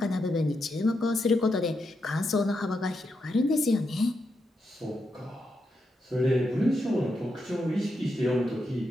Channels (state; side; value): normal; both; correlation 0.84